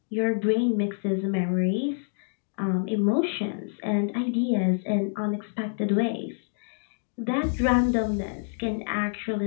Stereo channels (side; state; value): right; silent; digital silence